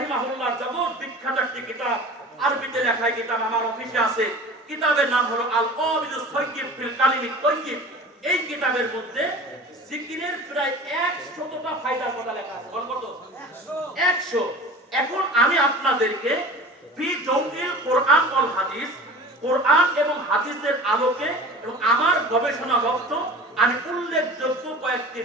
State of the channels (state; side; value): normal; both; correlation 0.39